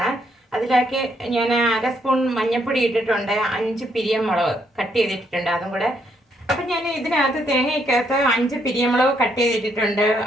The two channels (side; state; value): both; normal; correlation 0.73